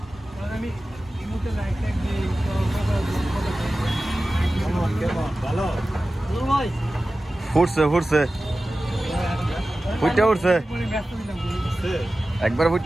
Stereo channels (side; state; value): both; normal; correlation 0.95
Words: ফুটছে ফুটছে ফুটে উঠছে, একবার